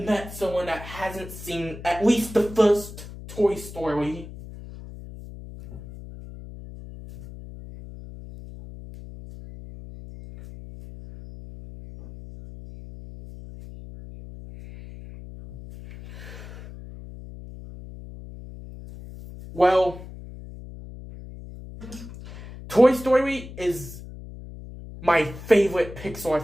someone that hasn't seen at least the first Toy Story. Well, Toy Story is my favorite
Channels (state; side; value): noise; left; hum, 14 dB below the sound